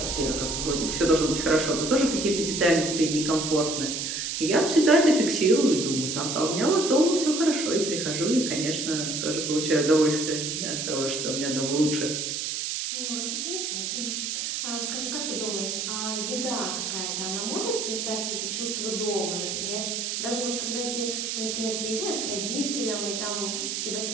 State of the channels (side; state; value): right; noise; hiss, 2 dB below the sound